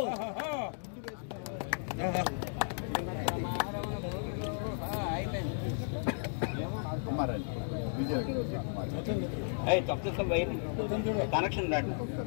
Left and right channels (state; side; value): silent; right; digital silence